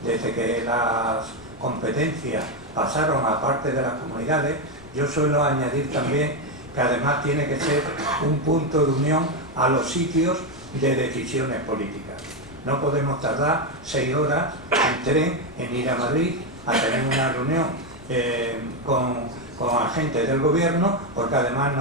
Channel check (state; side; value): noise; left; rumble, 21 dB below the sound